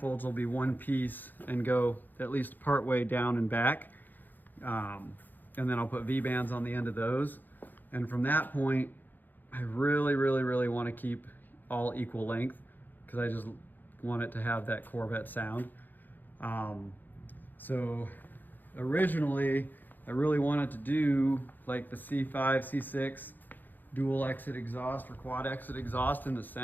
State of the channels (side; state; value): right; late; 0.087 ms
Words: will be one piece and go at least part way down and back. And then I'll put V-bands on the end of those. And from that point, I really, really, really want to keep all equal length because I just want it to have that Corvette sound. So originally, I really wanted to do like the C5, C6 dual exit exhaust or quad exit exhaust in the